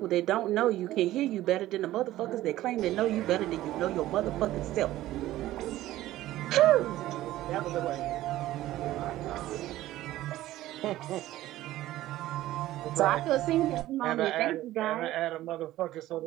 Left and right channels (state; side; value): quieter; left; 15.1 dB